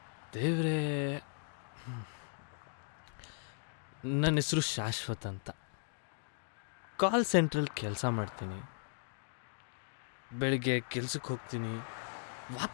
ದೇವ್ರೇ, ನನ್ನ ಹೆಸರು ಶಾಶ್ವತ್ ಅಂತ. ಕಾಲ್ ಸೆಂಟ್ರಲ್ಲಿ ಕೆಲಸ ಮಾಡ್ತೀನಿ. ಬೆಳಿಗ್ಗೆ ಕೆಲ್ಸಕ್ಕೆ ಹೋಗ್ತೀನಿ,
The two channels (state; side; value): silent; right; digital silence